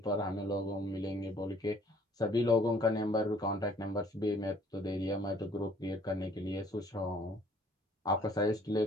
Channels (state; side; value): normal; both; correlation 0.58